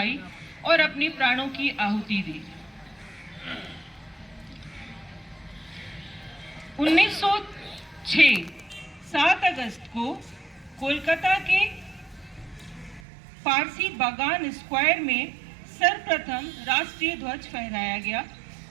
और अपने प्राणों की आहुति दी। 1906 7 अगस्त को कोलकाता के पारसी बागान स्क्वायर में सर्वप्रथम राष्ट्रीय ध्वज फहराया गया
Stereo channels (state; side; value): drops out; left; at 13.0 s